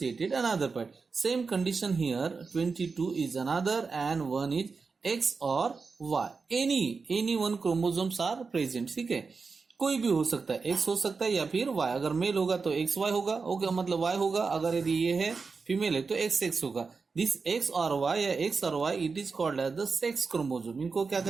another part. Same condition here, 22 is another and 1 is X or Y. Any one chromosomes are present. ठीक है, कोई भी हो सकता है, X हो सकता है या फिर Y। अगर मेल होगा तो XY होगा, ओके मतलब Y होगा। अगर यदि ये है फीमेल है तो XX होगा। दिस X और Y या X और Y it is called as the sex chromosome. इनको क्या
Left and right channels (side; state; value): left; quieter; 4.7 dB